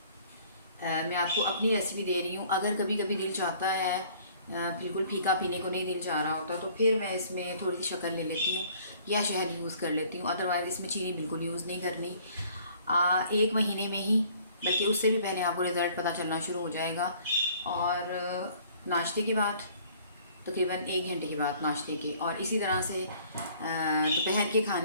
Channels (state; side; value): inverted; both; correlation -0.56